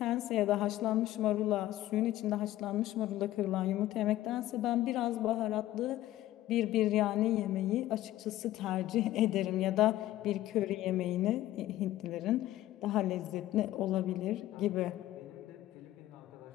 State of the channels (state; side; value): quieter; right; 14.7 dB